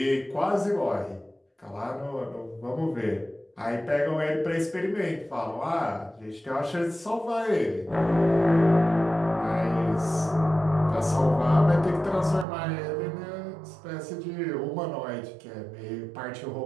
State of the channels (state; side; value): drops out; left; at 12.5 s